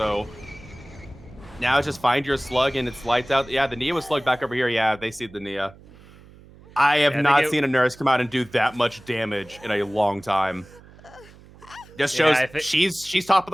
now it's just find your slug and it's lights out. Yeah, the Nia was slugged back over here. Yeah, they see the Nia. I have not seen a Nurse come out and do that much damage in a long time. Just shows she's top of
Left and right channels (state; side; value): noise; right; hum, 23 dB below the sound